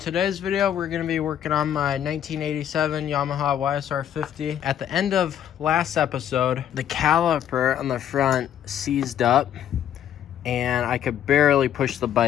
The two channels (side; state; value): right; quieter; 10.1 dB